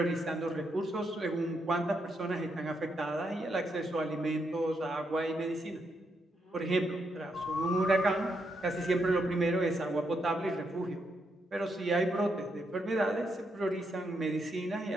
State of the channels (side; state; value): both; normal; correlation 0.80